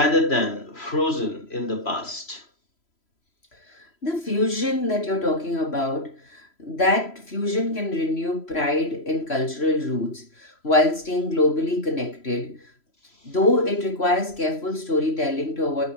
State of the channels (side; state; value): right; late; 3.0 ms